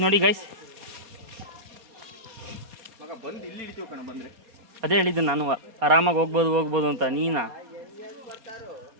ನೋಡಿ ಗೈಸ್, ಅದೇ ಹೇಳಿದ್ದು ನಾನು ಆರಾಮಾಗಿ ಹೋಗ್ಬೋದು ಅಂತ. ನೀನಾ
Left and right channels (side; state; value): left; late; 4.2 ms